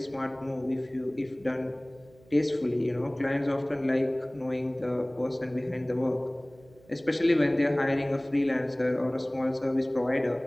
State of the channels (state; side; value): noise; right; hum, 27 dB below the sound